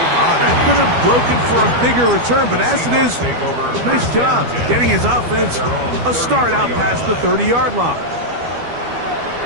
That could have broken for a bigger return, but as it is, nice job getting his offense a start out past the 30-yard line.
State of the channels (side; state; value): left; late; 12 ms